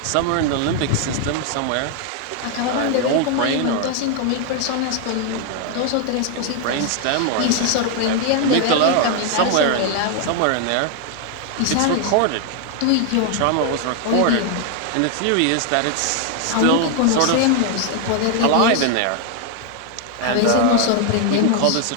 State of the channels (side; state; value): both; different; correlation 0.00